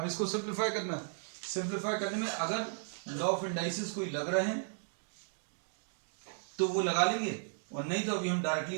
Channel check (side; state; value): left; silent; digital silence